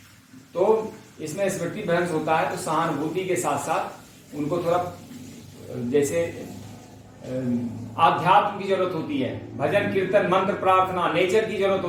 तो इसमें स्मृति भ्रंश होता है। तो सहानुभूति के साथ साथ उनको थोड़ा जैसे आध्यात्म की जरूरत होती है, भजन कीर्तन मंत्र प्रार्थना, नेचर की जरूरत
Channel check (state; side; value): identical; both; correlation 1.00